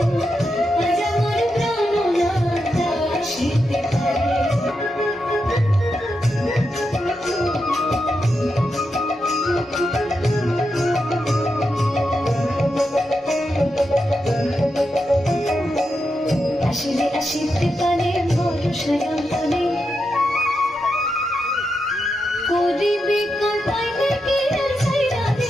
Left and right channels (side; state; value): both; normal; correlation 0.86